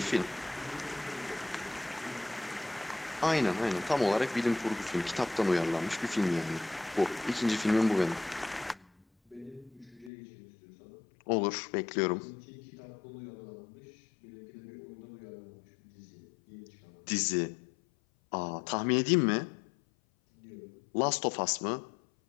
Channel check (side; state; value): right; drops out; at 10.1 s